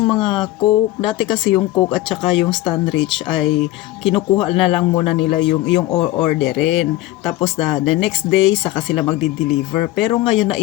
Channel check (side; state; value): right; quieter; 16.3 dB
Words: mga Coke, dati kasi yung Coke at saka yung Stanrich ay kinukuha na lang muna nila yung orderin. Tapos the next day saka sila magdi-deliver. Pero ngayon na